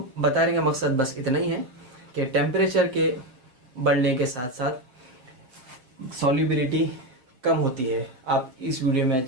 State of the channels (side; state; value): left; late; 7.9 ms